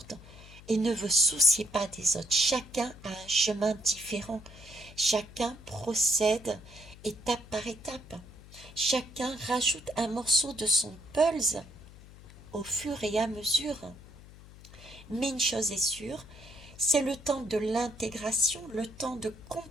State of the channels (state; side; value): noise; left; hum, 19 dB below the sound